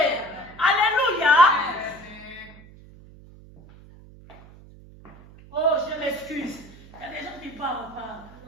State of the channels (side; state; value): right; noise; hum, 21 dB below the sound